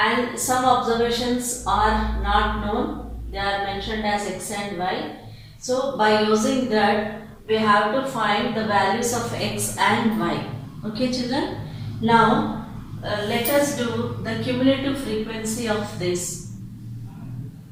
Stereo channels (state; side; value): identical; both; correlation 1.00